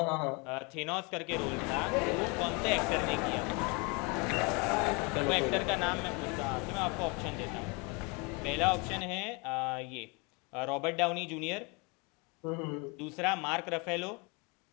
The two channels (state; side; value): quieter; right; 30.1 dB